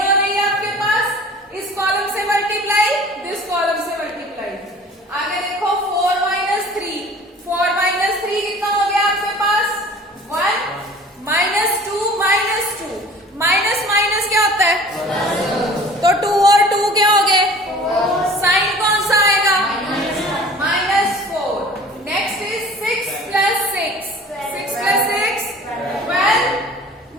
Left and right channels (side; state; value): both; normal; correlation 0.45